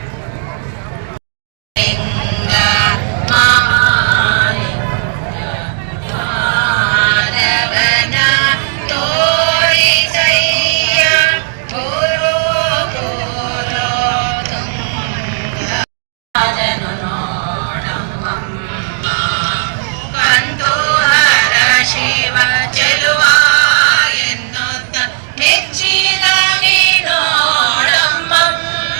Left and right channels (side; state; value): left; silent; digital silence